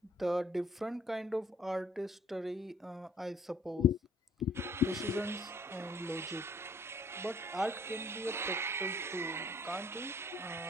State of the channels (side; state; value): both; normal; correlation 0.61